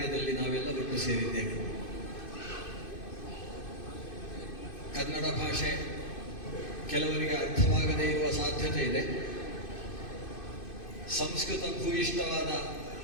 ನಾವೆಲ್ಲ ಒಟ್ಟು ಸೇರಿದ್ದೇವೆ. ಕನ್ನಡ ಭಾಷೆ ಕೆಲವರಿಗೆ ಅರ್ಥವಾಗದೇ ಇರುವ ಸಾಧ್ಯತೆ ಇದೆ. ಸಂಸ್ಕೃತ ಭೂಯಿಷ್ಠವಾದ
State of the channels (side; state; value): right; late; 2.5 ms